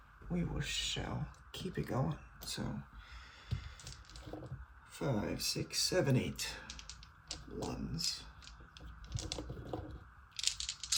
we shall keep it going. So 5, 6, 7, 8 ones.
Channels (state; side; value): identical; both; correlation 1.00